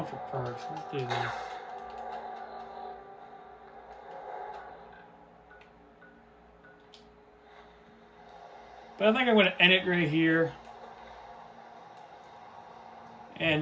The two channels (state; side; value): identical; both; correlation 1.00